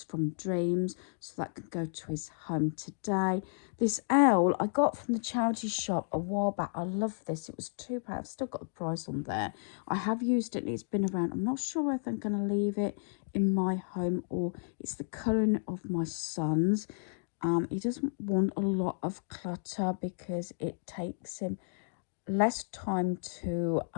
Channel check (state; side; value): silent; right; digital silence